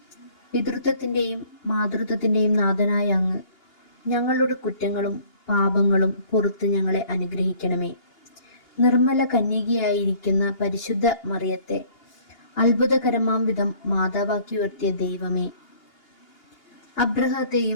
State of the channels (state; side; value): late; right; 2.8 ms